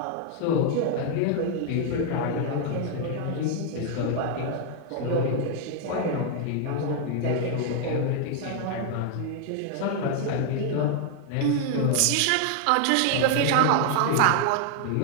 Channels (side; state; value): both; different; correlation 0.00